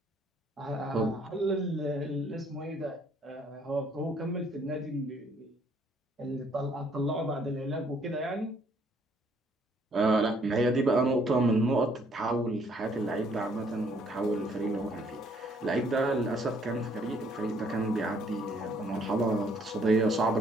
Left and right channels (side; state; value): both; normal; correlation 0.64